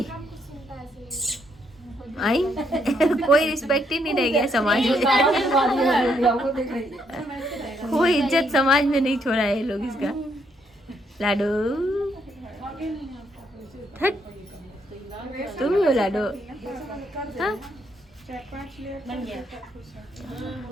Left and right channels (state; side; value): normal; both; correlation 0.74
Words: आई कोई रिस्पेक्ट ही नहीं रह गया समाज में। कोई इज्जत समाज में नहीं छोड़ा है ये लोग इसका। लाडो हट, तुम ही हो लाडो। हाँ?